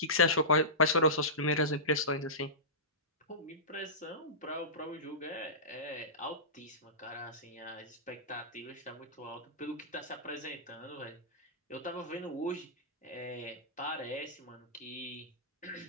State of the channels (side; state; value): both; normal; correlation -0.19